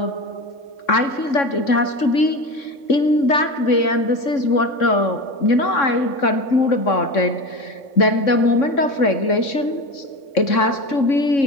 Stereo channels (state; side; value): late; right; 3.6 ms